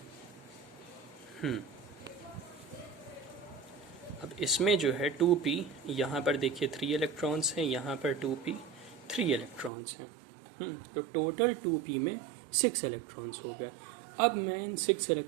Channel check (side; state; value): left; drops out; at 9.7 s